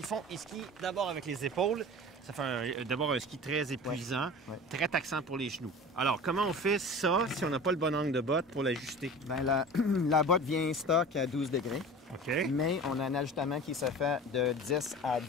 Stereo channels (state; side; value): normal; both; correlation 0.37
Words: font? Ils skient d'abord avec les épaules. Ça fait d'abord un ski très épuisant, très taxant pour les genoux. Alors, comment on fait ça si on n'a pas le bon angle de botte pour l'ajuster? Bien, la botte vient stock à 12 degrés. OK. Mais on a un ajustement qui se fait de 10 à